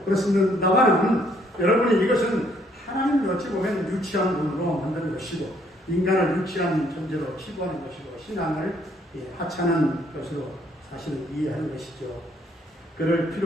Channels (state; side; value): normal; both; correlation 0.66